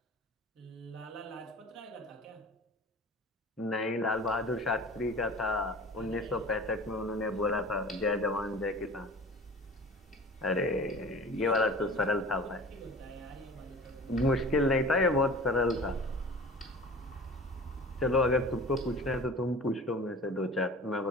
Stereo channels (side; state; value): both; normal; correlation 0.41